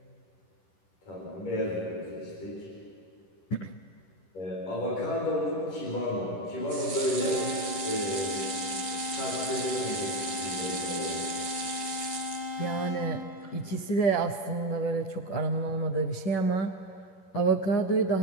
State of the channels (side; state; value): right; late; 10 ms